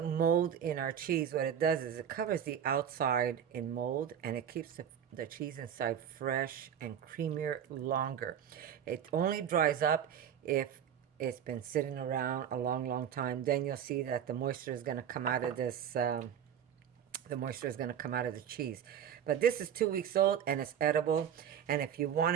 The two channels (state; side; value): quieter; left; 9.0 dB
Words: mold in our cheese, what it does is it covers the outside in mold, and it keeps the cheese inside fresh and creamier longer. It only dries up if it's been sitting around a long time. Then you'll see that the moisture is going to come out of this. The moisture is going to come out of the cheese. But this is 2 weeks old and it's edible. And if you want